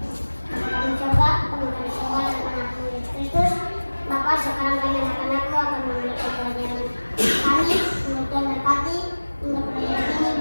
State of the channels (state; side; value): inverted; both; correlation -1.00